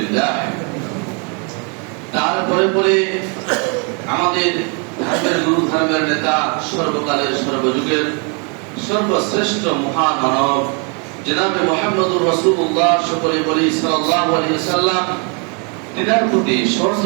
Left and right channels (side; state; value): left; quieter; 35.7 dB